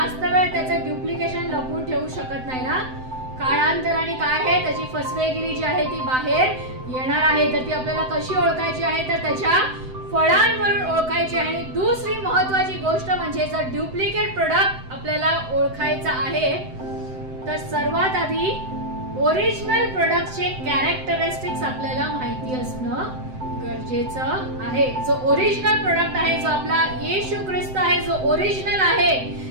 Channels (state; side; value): late; left; 7.8 ms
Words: वेळ त्याचं डुप्लिकेशन लपवून ठेवू शकत नाही ना. काळांतराने काय आहे, त्याची फसवेगिरी जी आहे ती बाहेर येणार आहे. तर ती आपल्याला कशी ओळखायची आहे? तर त्याच्या फळांवरून ओळखायची आहे. आणि दुसरी महत्वाची गोष्ट म्हणजे जर डुप्लिकेट प्रोडक्ट आपल्याला ओळखायचा आहे तर सर्वात आधी ओरिजिनल प्रोडक्टचे कॅरेक्टरिस्टिक्स आपल्याला माहिती असणं गरजेचं आहे. जो ओरिजिनल प्रोडक्ट आहे, जो आपला येशू ख्रिस्त आहे, जो ओरिजिनल आहे,